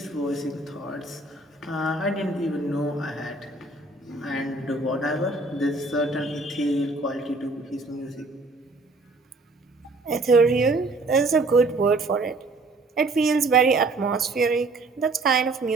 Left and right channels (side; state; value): left; quieter; 3.2 dB